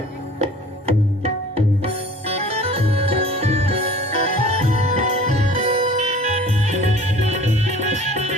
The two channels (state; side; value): normal; both; correlation 0.46